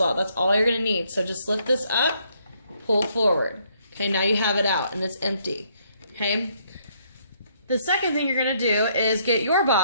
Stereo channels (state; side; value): inverted; both; correlation -0.69